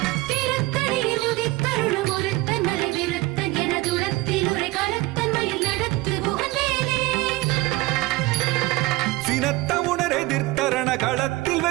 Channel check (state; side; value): quieter; left; 20.3 dB